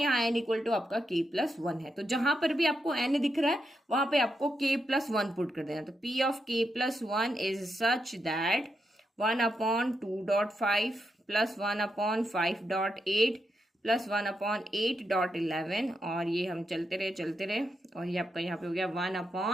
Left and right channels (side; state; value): both; normal; correlation 0.84